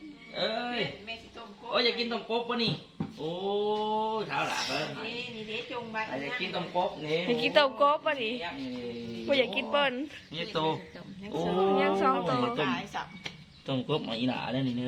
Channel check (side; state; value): both; identical; correlation 1.00